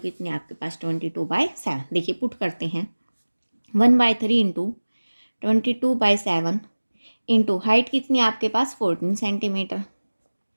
है आपके पास? 22/7। देखिए पुट करते हैं। 1/3 इंटू 22/7 इंटू हाइट कितनी है आपके पास? 14 सेंटीमीटर।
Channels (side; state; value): both; inverted; correlation -1.00